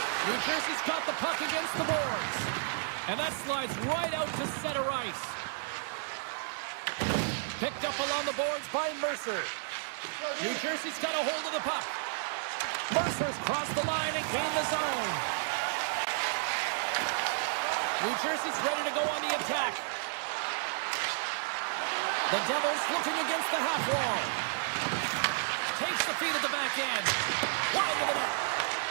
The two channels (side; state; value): left; silent; digital silence